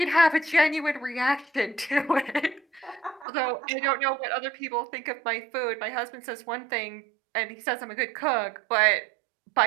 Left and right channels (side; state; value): left; drops out; at 3.2 s